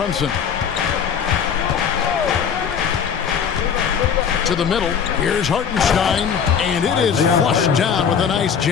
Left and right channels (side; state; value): right; quieter; 7.3 dB